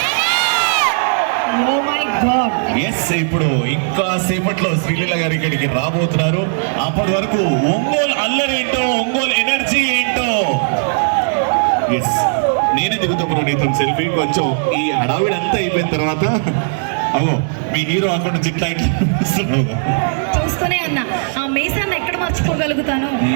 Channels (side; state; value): left; silent; digital silence